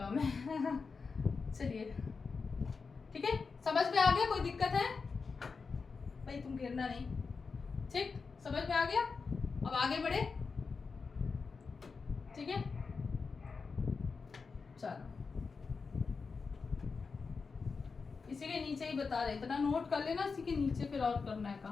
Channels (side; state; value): right; quieter; 4.8 dB